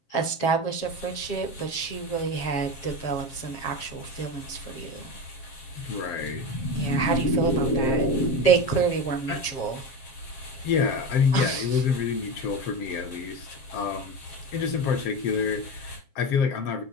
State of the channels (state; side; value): late; right; 7.5 ms